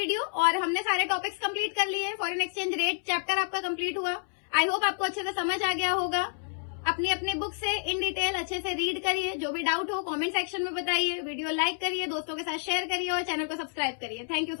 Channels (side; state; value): right; silent; 58 dB below the other